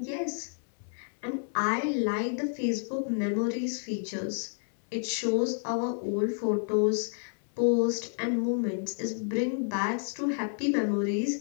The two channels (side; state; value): right; silent; 58 dB below the other